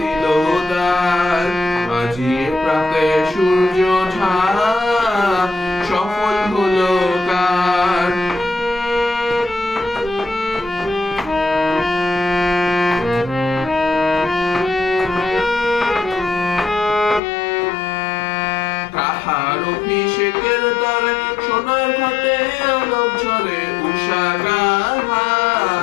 দিল দ্বার, আজি প্রাতে সূর্য ওঠা সফল হলো কার। কাহার অভিষেকের তরে সোনার ঘাটে আলোক ঝরে, উষা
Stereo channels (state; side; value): drops out; right; at 17.2 s